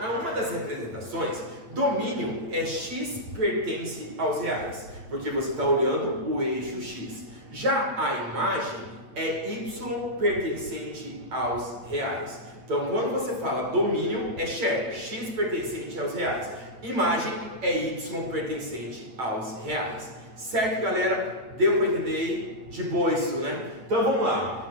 uma das representações, domínio é x pertence aos reais, porque você está olhando o eixo X. Já a imagem é y pertencente aos reais. Então, quando você fala domínio, é share, x pertencente aos reais. Imagem é y pertencente aos reais. Certo, galera? Deu para entender aí? De boa isso, né? Então, vamos lá.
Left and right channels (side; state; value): left; late; 8.8 ms